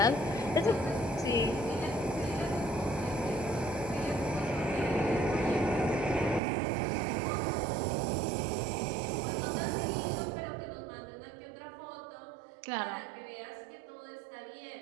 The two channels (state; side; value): drops out; left; at 6.4 s